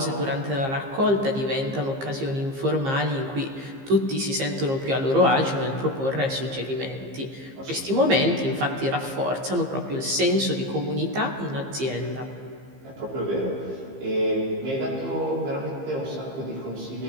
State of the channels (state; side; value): late; left; 15 ms